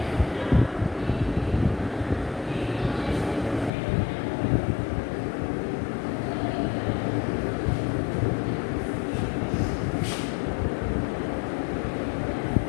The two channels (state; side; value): drops out; right; at 3.7 s